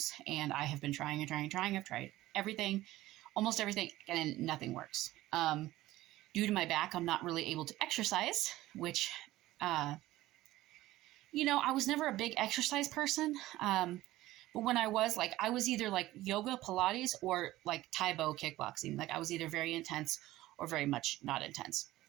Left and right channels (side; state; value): left; quieter; 16.5 dB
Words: and I have been trying and trying. I've tried everything, almost everything, and nothing works. Due to my back, I'm not really able to exercise, which, I was never a big exercise person. But when I was either like yoga, Pilates, or like Taibo kickboxing. Like I was either very intense or very much not intense.